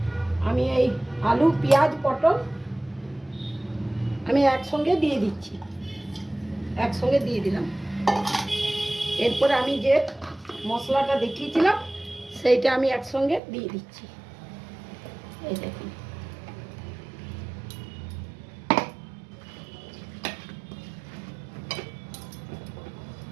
আমি এই আলু, পেঁয়াজ, পটল আমি একসঙ্গে দিয়ে দিচ্ছি, একসঙ্গে দিয়ে দিলাম। এরপরে আমি যে মশলাটা দেখিয়েছিলাম সেইটা আমি একসঙ্গে দিয়ে দিচ্ছি। এই দেখুন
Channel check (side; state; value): left; drops out; at 13.4 s